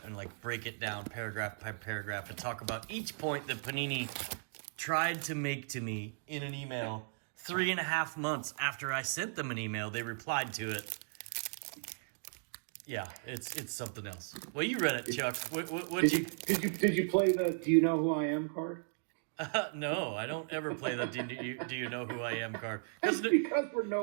and, like, break it down paragraph by paragraph and talk about each point that Panini tried to make to me in an email 3.5 months after I sent them an email. They replied to it. Yeah, it's something else. Well, you read it, Chuck. Did you play the "Do you know who I am" card? No, I don't ever play the "Do you know who I am" card. That's because we're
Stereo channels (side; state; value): left; silent; digital silence